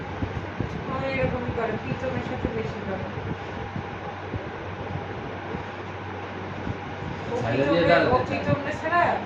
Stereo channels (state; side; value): identical; both; correlation 1.00